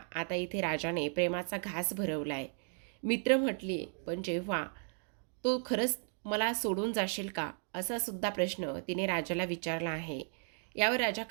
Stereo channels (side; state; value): left; silent; 54 dB below the other